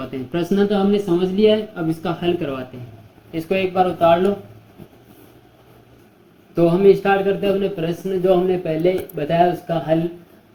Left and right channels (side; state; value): both; identical; correlation 1.00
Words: हैं। प्रश्न तो हमने समझ लिया है, अब इसका हल करवाते हैं। इसको एक बार उतार लो। तो हम स्टार्ट करते हैं अपने प्रश्न जो हमने पहले बताया उसका हल।